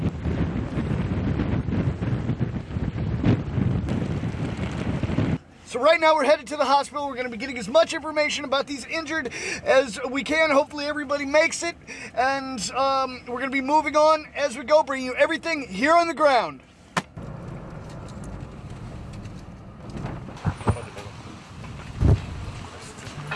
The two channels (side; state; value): both; identical; correlation 1.00